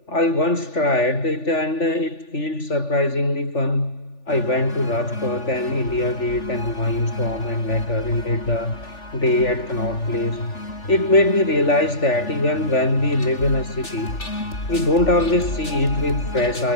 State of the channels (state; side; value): late; right; 3.4 ms